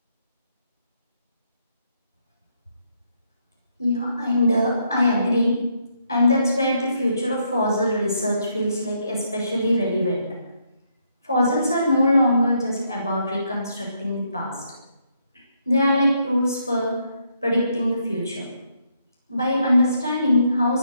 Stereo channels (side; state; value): both; inverted; correlation -0.75